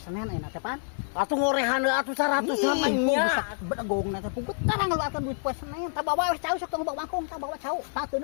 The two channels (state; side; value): silent; right; 60 dB below the other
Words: ayeuna teh pan. Atuh ngorehan atuh 100 namanya. Bedegong na teh pugut karang ngaluarkeun duit poe Senen. Tah bawa we cau sok tong bawa mangkung tah bawa cau.